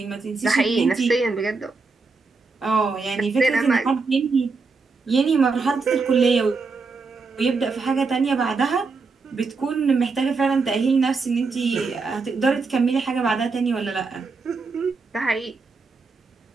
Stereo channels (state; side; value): quieter; left; 4.3 dB